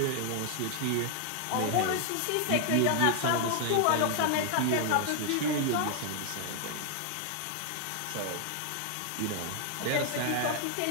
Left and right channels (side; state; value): both; different; correlation 0.00